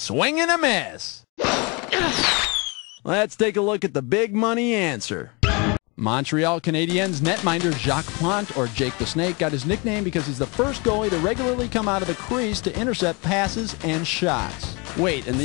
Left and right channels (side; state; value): right; quieter; 29.5 dB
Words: and a miss. Let's take a look at the big money answer. Montreal Canadiens netminder Jacques Plante, or Jake the Snake, got his nickname because he's the first goalie to regularly come out of the crease to intercept passes and shots. Wait, and